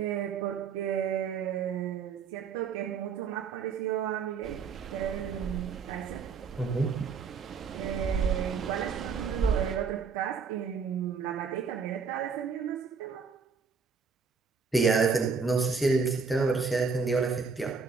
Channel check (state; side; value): quieter; left; 5.4 dB